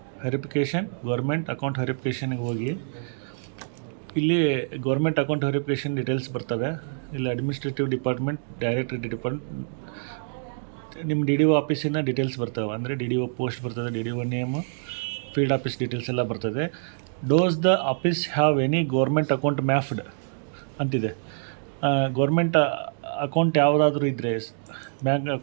verification government account ವೆರಿಫಿಕೇಷನ್ಗೆ ಹೋಗಿ ಇಲ್ಲಿ ಗೌರ್ಮೆಂಟ್ ಅಕೌಂಟ್ ವೆರಿಫಿಕೇಷನ್ ಡೀಟೇಲ್ಸ್ ಬರ್ತವೆ. ಇಲ್ಲಿ ಅಡ್ಮಿನಿಸ್ಟ್ರೇಟಿವ್ ಡಿಪಾರ್ಟ್ಮೆಂಟ್, ಡೈರೆಕ್ಟರಿ ಡಿಪಾರ್ಟ್ಮೆಂಟ್, ನಿಮ್ಮ ಡಿ ಡಿ ಒ ಆಫೀಸಿನ ಡೀಟೇಲ್ಸ್ ಬರ್ತವೆ. ಅಂದರೆ ಡಿ ಡಿ ಒ ಪೋಸ್ಟ್ ಬರ್ತದೆ, D D O name, field office details ಎಲ್ಲ ಬರ್ತದೆ. Does the office have any government account ಮ್ಯಾಫ್ಡ್ ಅಂತಿದೆ. ಗೌರ್ಮೆಂಟ್ ಅಕೌಂಟ್ ಯಾವುದಾದ್ರೂ ಇದ್ದರೆ, ಬ್ಯಾಂಕ್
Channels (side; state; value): left; silent; digital silence